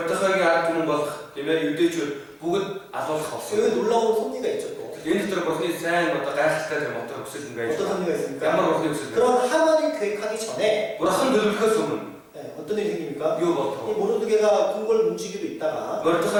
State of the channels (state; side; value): identical; both; correlation 1.00